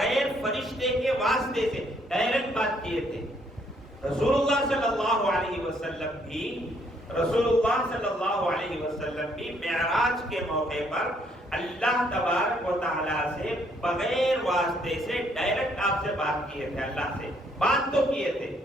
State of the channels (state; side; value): normal; both; correlation 0.68